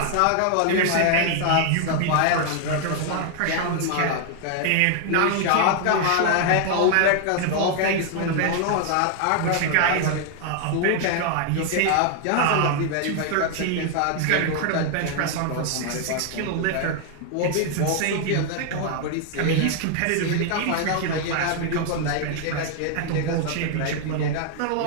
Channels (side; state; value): both; different; correlation 0.00